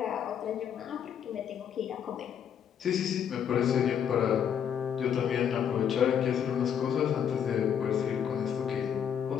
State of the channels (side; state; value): right; quieter; 8.4 dB